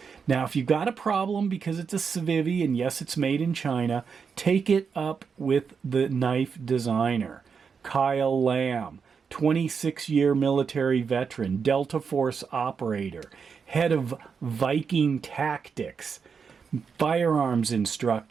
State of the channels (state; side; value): quieter; left; 6.0 dB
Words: Now, if you've got a problem because it's a Civivi, and yes, it's made in China, take it up with the knife designer, Kyle Lamb, 26-year military veteran, Delta Force operator, head of Viking Tactics, firearms